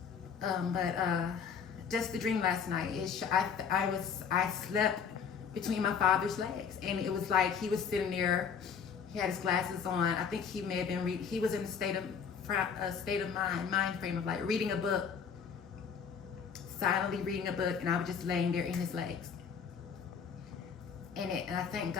But just the dream last night. I slept between my father's legs, and it was like he was sitting there. He had his glasses on. I think he may have been he was in a state of mind frame of like reading a book. Silently reading a book, and I was just laying there in his legs. And I thank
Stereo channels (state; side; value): quieter; right; 6.7 dB